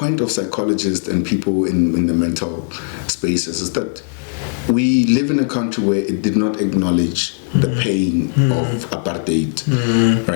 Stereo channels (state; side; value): silent; right; digital silence